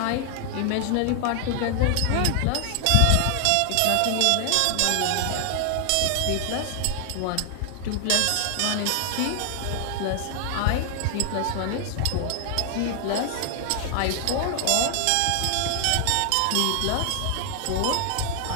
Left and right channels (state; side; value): different; both; correlation 0.00